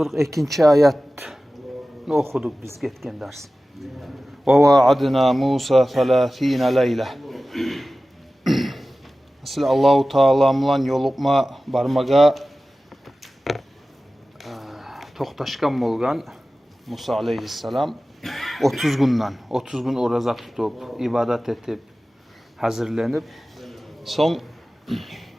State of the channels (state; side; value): normal; both; correlation 0.96